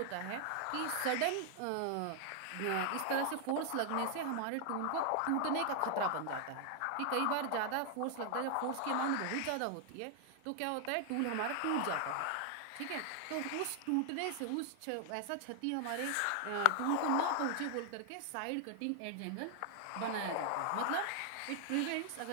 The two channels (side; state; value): both; different; correlation 0.00